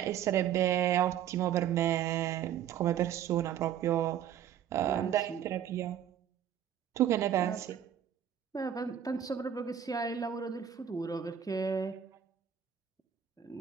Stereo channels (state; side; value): quieter; left; 9.7 dB